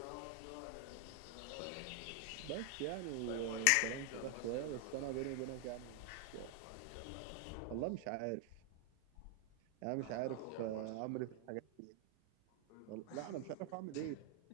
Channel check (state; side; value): different; both; correlation 0.00